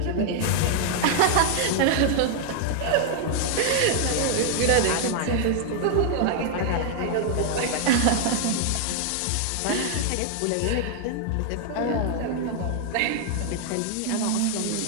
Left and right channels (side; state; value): both; different; correlation 0.00